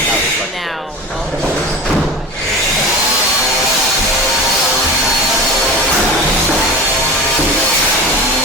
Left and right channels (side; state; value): both; normal; correlation 0.32